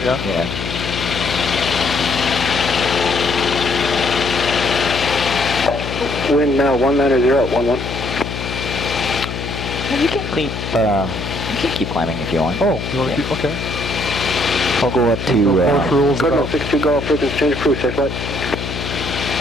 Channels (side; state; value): left; noise; hum, 6 dB below the sound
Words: Yeah. Wind now 190 at 11. You can keep climbing if you want. Oh, you want to keep? Okay. I'll go up to. Cardinal 62 Golf, frequency change approved, safe flight.